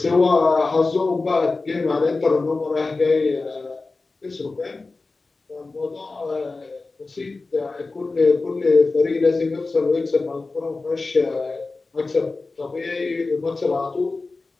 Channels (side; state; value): right; quieter; 3.6 dB